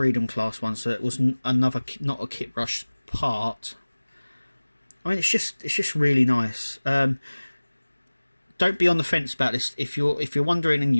class one. So it was another, not a kit brush part. I mean, it's just really nice. Don't be on the fence about this. If you're wondering and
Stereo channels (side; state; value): both; inverted; correlation -1.00